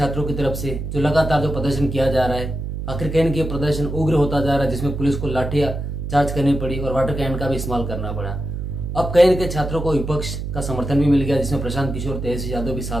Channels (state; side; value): noise; right; hum, 5 dB below the sound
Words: की तरफ से जो लगातार जो प्रदर्शन किया जा रहा है, आखिर कैन के प्रदर्शन उग्र होता जा रहा है, जिसमें पुलिस को लाठियां चार्ज करनी पड़ी और वाटर कैन का भी इस्तेमाल करना पड़ा। अब कैन के छात्रों को विपक्ष का समर्थन भी मिल गया, जिसमें प्रशांत किशोर तेजस्वी यादव भी